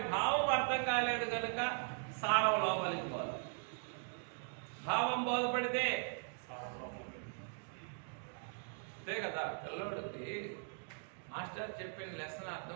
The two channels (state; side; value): silent; left; 51 dB below the other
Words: భావం అర్థం కాలేదు కనుక సారం లోపలికి పోదు. భావం బోధపడితే అంతే కదా. పిల్లోడికి మాస్టర్ చెప్పిన లెసన్